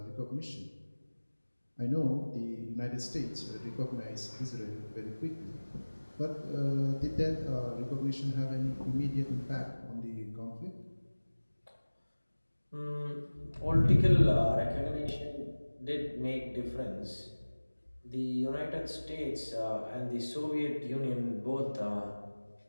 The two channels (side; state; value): both; inverted; correlation -1.00